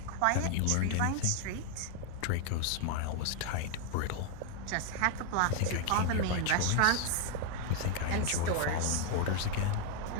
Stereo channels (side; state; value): both; different; correlation 0.00